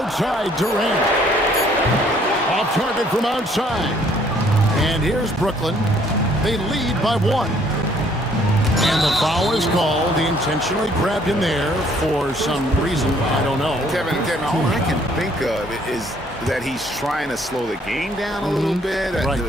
Durant. Off target from outside. And here's Brooklyn. They lead by 1. And the foul is called. He intentionally grabbed him there for some reason. I don't know. Kevin, all I can think of is that he's trying to slow the game down a little bit. Right.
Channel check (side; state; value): both; normal; correlation 0.62